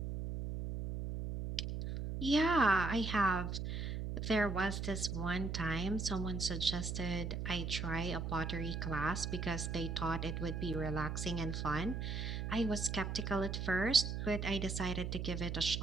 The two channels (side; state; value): right; noise; hum, 3 dB below the sound